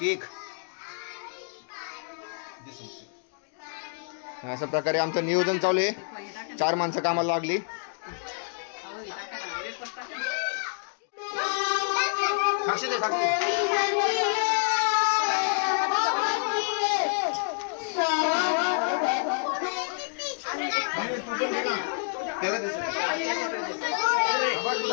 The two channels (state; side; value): silent; right; 59 dB below the other